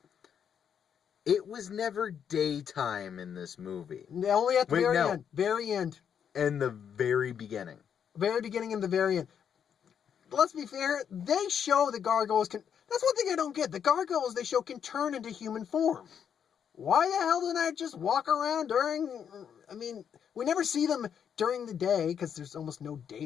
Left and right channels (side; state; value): right; quieter; 8.0 dB